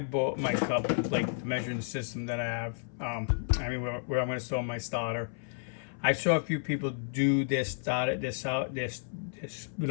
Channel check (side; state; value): right; silent; 57 dB below the other